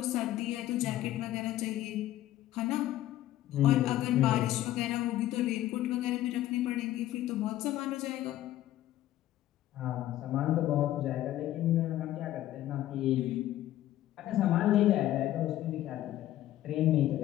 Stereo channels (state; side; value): quieter; right; 13.9 dB